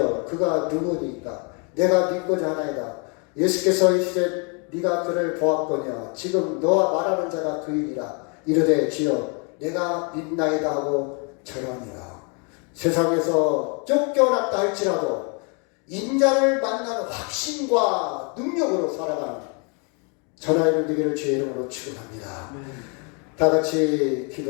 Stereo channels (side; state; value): right; quieter; 35.4 dB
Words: 그가 누구니까? 내가 믿고자 하나이다. 예수께서 이르시되 네가 그를 보았거냐? 지금 너와 말하는 자가 그이니라. 이르되 주여 내가 믿나이다 하고 절하니라. 세상에서 쫓겨났다 할지라도 인자를 만나는 확신과 능력으로 살아가는 저나 이름 되기를 주의 이름으로 축원합니다. 다 같이